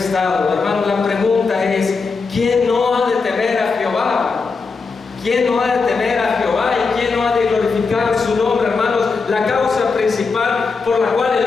Hermano, la pregunta es: ¿quién no ha de temer a Jehová? ¿Quién no ha de temer a Jehová y quién no ha de glorificar su nombre? Hermanos, la causa principal por la cual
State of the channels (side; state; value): right; quieter; 4.6 dB